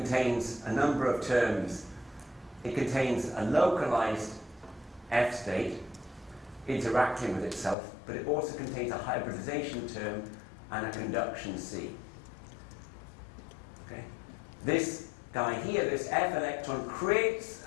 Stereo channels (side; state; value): right; drops out; at 7.8 s